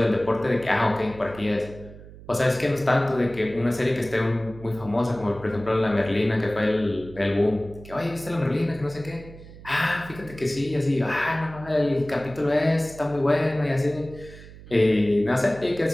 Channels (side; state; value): right; noise; hum, 18 dB below the sound